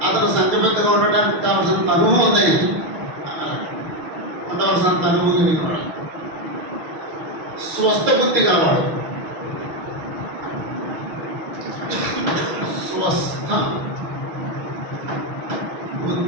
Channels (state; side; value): late; left; 6.6 ms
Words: అతను సంఖ్యబద్ధంగా ఉండడానికి కావాల్సినంత అనుభవం ఉంది, ఉండవలసినంత అనుభవం కలిగినవాడు. స్వస్థ బుద్ధి కావాడు. స్వస్థ